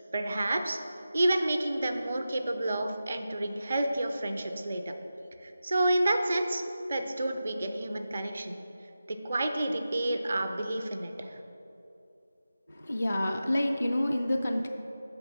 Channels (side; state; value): both; inverted; correlation -0.92